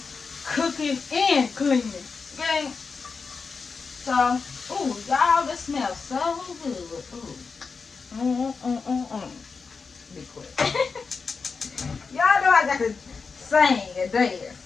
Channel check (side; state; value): right; quieter; 4.9 dB